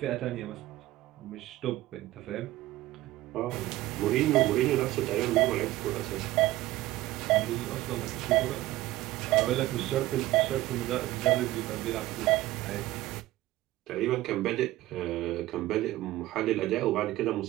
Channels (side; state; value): left; quieter; 16.5 dB